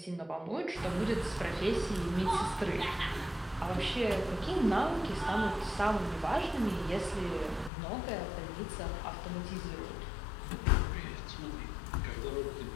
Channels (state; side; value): drops out; right; at 7.7 s